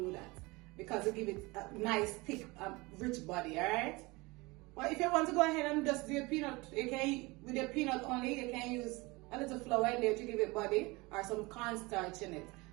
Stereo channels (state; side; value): quieter; left; 24.0 dB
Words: that because it gives it a nice, thick, rich body. Alright. But if you want to go ahead and just do your peanut, you can, with your peanut only, you can use a little flour in there to give it body or some cornstarch in it.